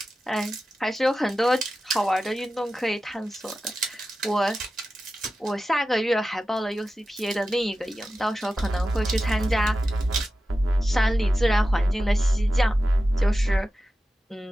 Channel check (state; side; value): normal; both; correlation 0.93